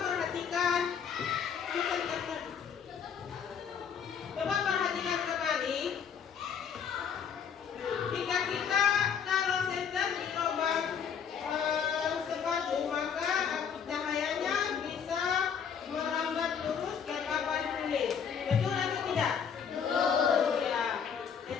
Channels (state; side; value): quieter; right; 7.3 dB